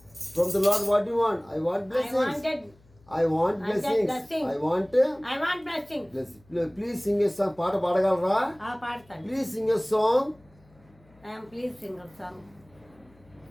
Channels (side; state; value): left; noise; hum, 29 dB below the sound